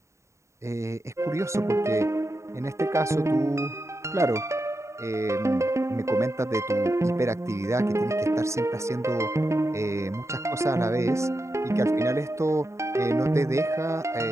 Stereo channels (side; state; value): left; late; 0.14 ms